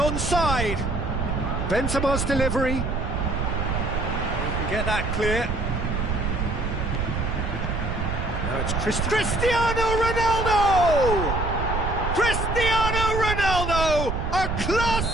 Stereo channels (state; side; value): noise; right; rumble, 2 dB below the sound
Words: Benzema's delivery. He can get that clear. Now it's Cristiano Ronaldo! Cristiano Ronaldo! A class